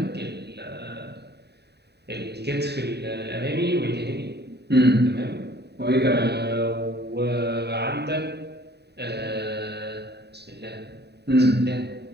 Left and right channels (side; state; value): left; late; 0.48 ms